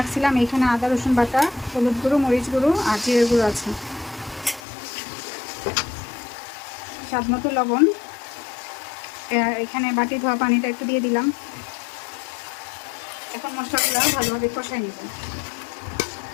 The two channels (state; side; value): drops out; right; at 4.6 s